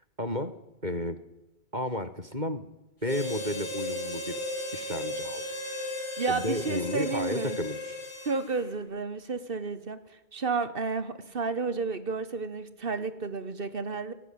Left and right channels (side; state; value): left; late; 2.6 ms